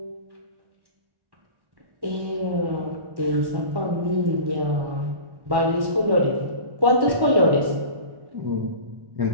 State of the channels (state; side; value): late; left; 1.1 ms